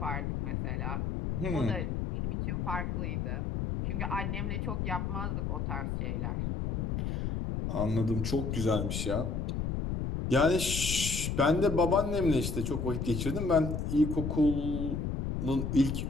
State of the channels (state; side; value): noise; left; rumble, 2 dB below the sound